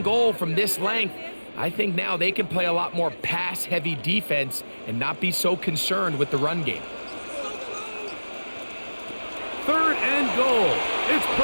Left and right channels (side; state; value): both; inverted; correlation -1.00